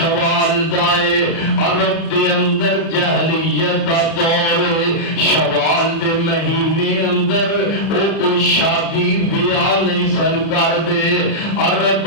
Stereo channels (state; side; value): late; right; 30 ms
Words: دائے، عرب دے اندر جہلیت دا دور ہے، شوال دے مہینے اندر وہ کوئی شادی بیاہ نہیں سن کر دے، عرب